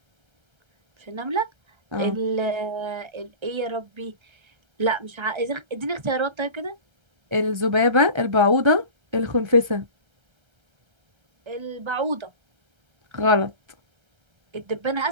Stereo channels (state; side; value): late; left; 1.3 ms